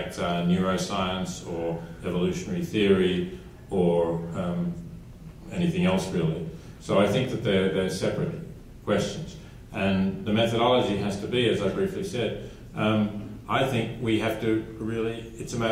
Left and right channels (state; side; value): identical; both; correlation 1.00